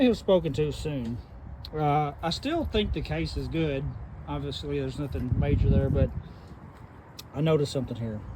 have spoken too soon. I still think the case is good. Obviously, there's nothing major there, but I noticed something here.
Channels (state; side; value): identical; both; correlation 1.00